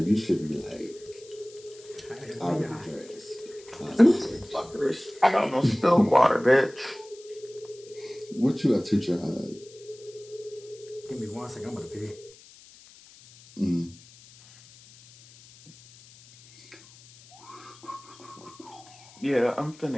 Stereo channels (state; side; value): noise; left; hiss, 23 dB below the sound